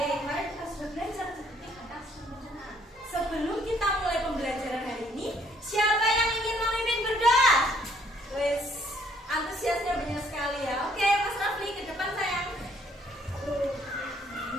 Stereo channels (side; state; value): both; normal; correlation 0.65